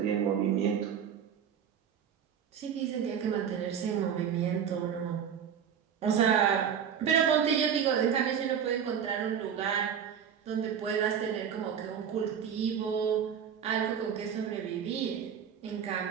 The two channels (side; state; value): left; quieter; 8.1 dB